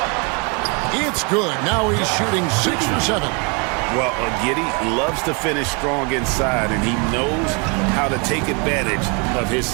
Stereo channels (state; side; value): quieter; left; 33.3 dB